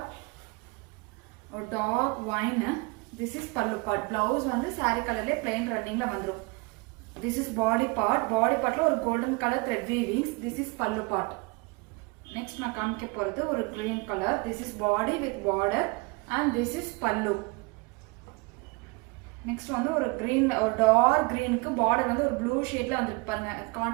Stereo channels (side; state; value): left; quieter; 27.2 dB